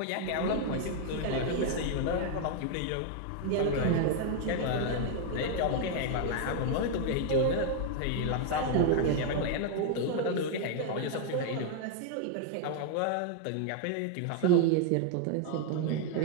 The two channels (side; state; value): both; different; correlation 0.00